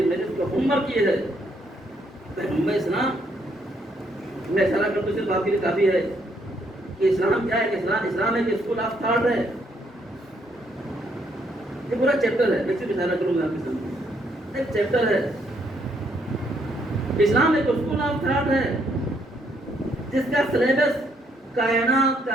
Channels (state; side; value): normal; both; correlation 0.71